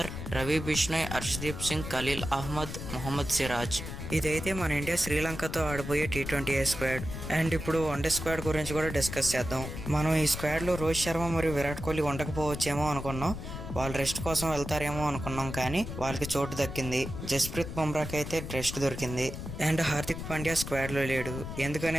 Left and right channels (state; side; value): noise; left; rumble, 8 dB below the sound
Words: Ravi Bishnoi, Harshdeep Singh, Khaleel Ahmed, Mohammed Siraj. ఇదైతే మన ఇండియా శ్రీలంకతో ఆడబోయే టీ20 స్క్వాడ్. అండ్ ఇప్పుడు వన్డే స్క్వాడ్ గురించి కూడా డిస్కస్ చేద్దాం. మనం ఈ స్క్వాడ్లో రోహిత్ శర్మ మరియు విరాట్ కోహ్లీ ఉండకపోవచ్చేమో అనుకున్నాం. వాళ్ళు రెస్ట్ కోసం వెళ్తారేమో అనుకున్నాం, కానీ వాళ్ళకి చోటు దక్కింది. జస్ప్రీత్ బుమ్రాకి అయితే రెస్ట్ దొరికింది. అండ్ హార్దిక్ పాండ్యా స్క్వాడ్లో లేడు.